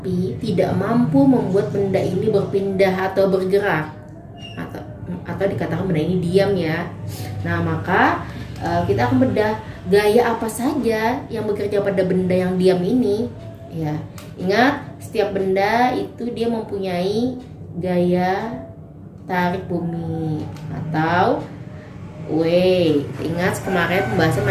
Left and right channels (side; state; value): both; identical; correlation 1.00